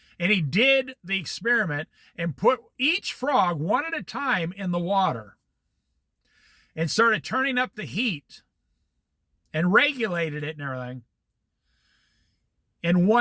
and he did the experiment and put each frog one at a time in the water and started turning up the heat and regulated it and everything. And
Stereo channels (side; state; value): both; identical; correlation 1.00